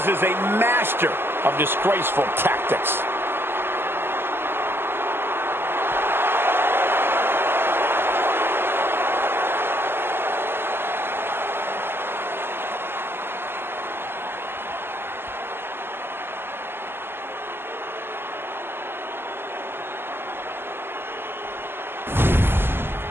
is a master of disgraceful tactics.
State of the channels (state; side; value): late; left; 0.11 ms